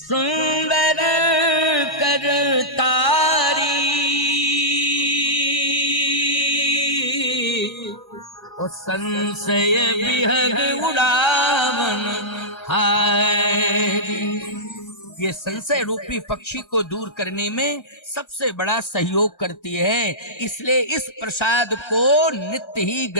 करतारी और संशय विहग उड़ावन हारी। ये संशय रूपी पक्षी को दूर करने में सबसे बड़ा सहयोग करती है। इसलिए इस प्रसाद को नित्य ही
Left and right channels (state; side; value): late; right; 1.3 ms